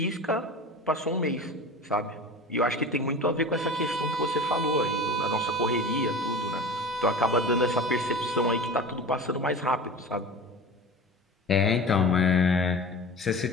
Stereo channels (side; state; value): both; normal; correlation 0.34